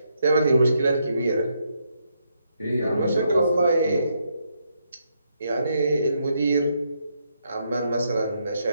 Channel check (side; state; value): both; inverted; correlation -0.77